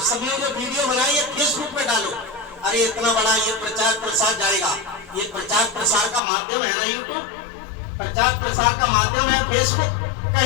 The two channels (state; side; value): drops out; right; at 6.2 s